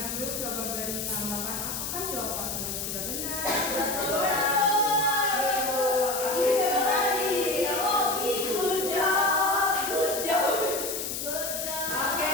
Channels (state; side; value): noise; left; hiss, 4 dB below the sound